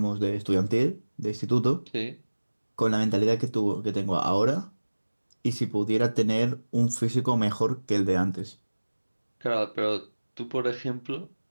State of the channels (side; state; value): both; inverted; correlation -1.00